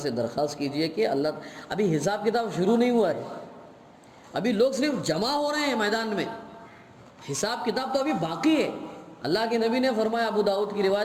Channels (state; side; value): identical; both; correlation 1.00